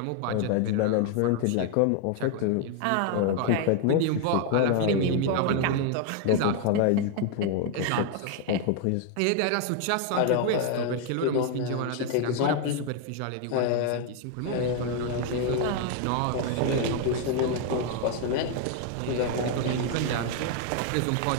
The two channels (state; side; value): different; both; correlation 0.01